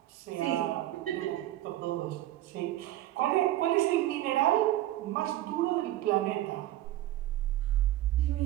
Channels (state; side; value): quieter; left; 14.7 dB